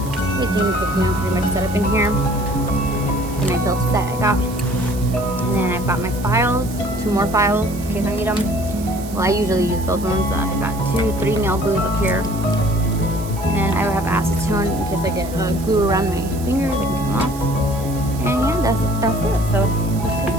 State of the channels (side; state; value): right; noise; hiss, 16 dB below the sound